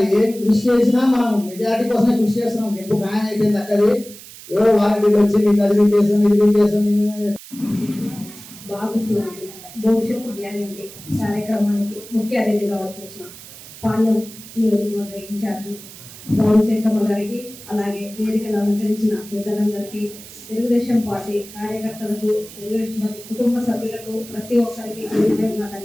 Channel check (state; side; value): noise; right; hiss, 17 dB below the sound